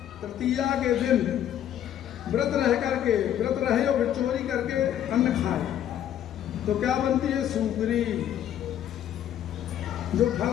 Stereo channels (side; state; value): right; quieter; 10.7 dB